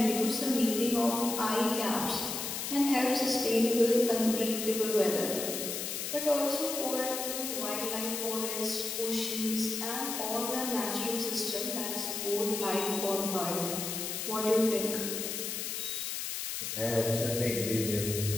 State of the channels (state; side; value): noise; left; hiss, 4 dB below the sound